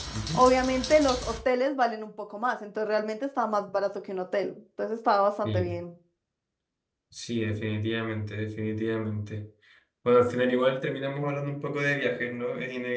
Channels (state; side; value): identical; both; correlation 1.00